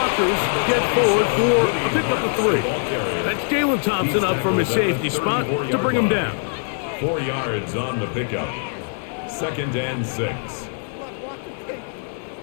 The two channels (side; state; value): right; silent; 62 dB below the other